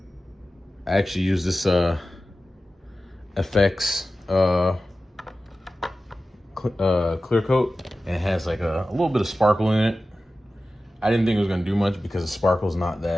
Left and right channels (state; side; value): normal; both; correlation 0.95